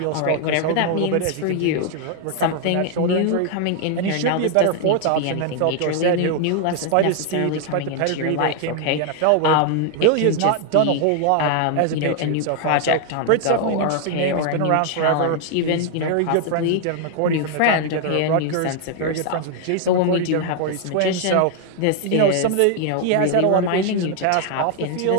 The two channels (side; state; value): both; different; correlation 0.00